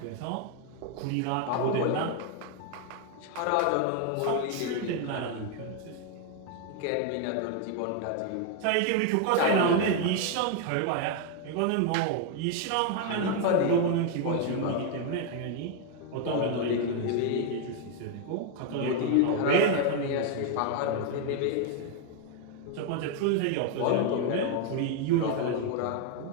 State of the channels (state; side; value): different; both; correlation 0.01